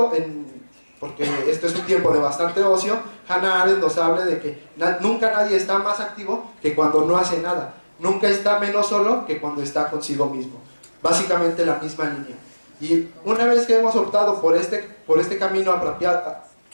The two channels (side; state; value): both; inverted; correlation -1.00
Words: porque esto es un tiempo de bastante ocio, Hannah Arendt nos habla de que nunca nadie está más activo que cuando no hace nada, nunca está menos solo que cuando está consigo mismo. Básicamente la misma línea. Y una vez que hemos optado por este camino